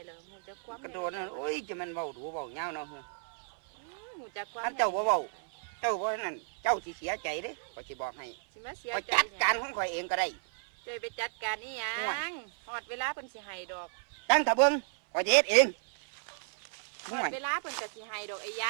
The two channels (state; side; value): silent; left; 56 dB below the other